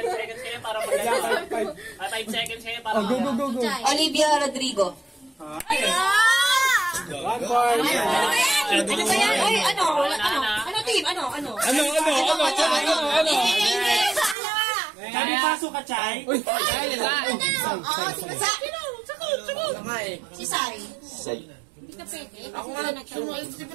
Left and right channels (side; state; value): left; drops out; at 14.4 s